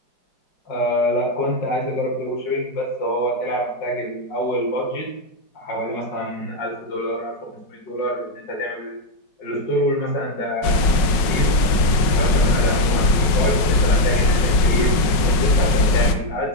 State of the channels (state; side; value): late; right; 5.3 ms